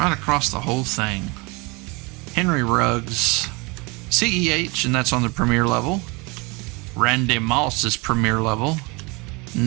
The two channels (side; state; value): left; quieter; 27.3 dB